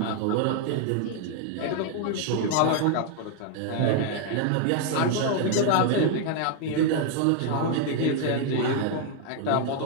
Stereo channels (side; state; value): both; different; correlation 0.00